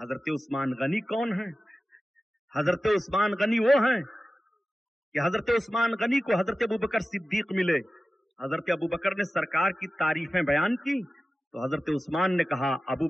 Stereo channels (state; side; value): normal; both; correlation 0.95